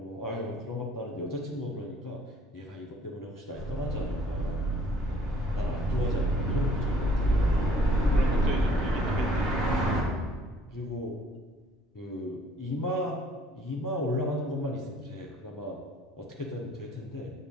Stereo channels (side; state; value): both; normal; correlation 0.58